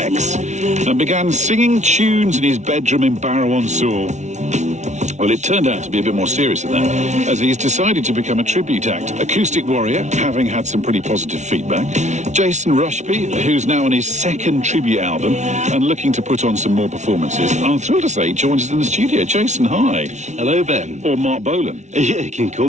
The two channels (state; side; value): late; left; 0.33 ms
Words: and began singing tunes in his bedroom in Barrow-on-Soar. Well, it turned out to be a bit more serious than that, as he's decided to become a tribute act. Acoustic Warrior, having had some pretty positive feedback. Jason Rushby, who's now on his second tribute album and looking to put on some more performances. I'm thrilled to say he joins us in the studio. Jason, hi. Hello, Ben. Or Marc Bolan. Yeah, you can call